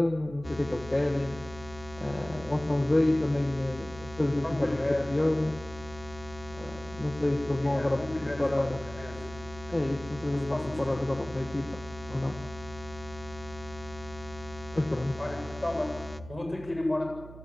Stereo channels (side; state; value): right; noise; hum, 15 dB below the sound